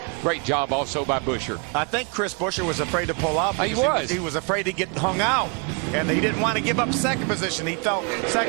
great job also by Buescher. I think Chris Buescher was afraid to pull out. He was. He was afraid to get hung out, and he didn't want to give up second position. He felt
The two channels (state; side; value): quieter; left; 35.0 dB